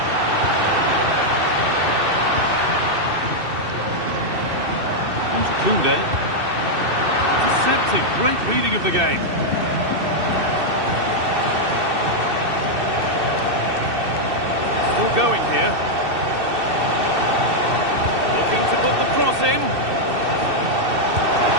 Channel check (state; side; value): late; left; 2.6 ms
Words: On to Koundé. Deceptive, great reading of the game. Still going here. To put the cross in.